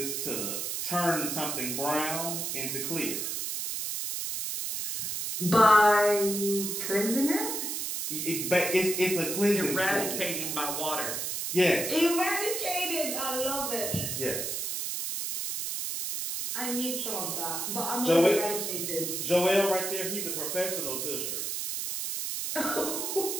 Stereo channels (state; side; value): noise; right; hiss, 3 dB below the sound